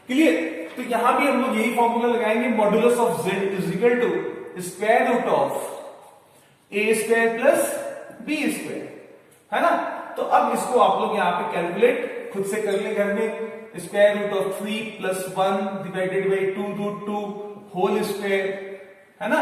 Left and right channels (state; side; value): identical; both; correlation 1.00